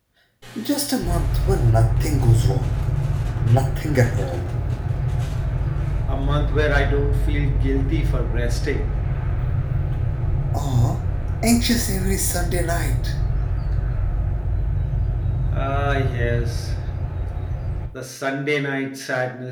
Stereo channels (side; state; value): both; identical; correlation 1.00